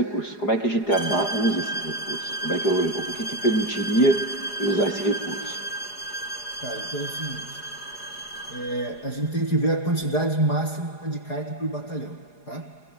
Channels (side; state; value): right; late; 4.9 ms